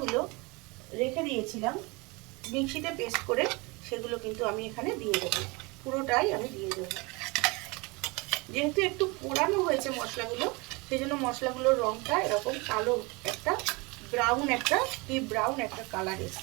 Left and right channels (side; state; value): left; quieter; 26.6 dB